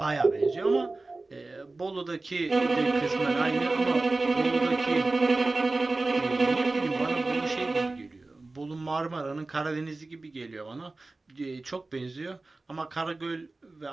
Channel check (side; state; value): left; quieter; 3.3 dB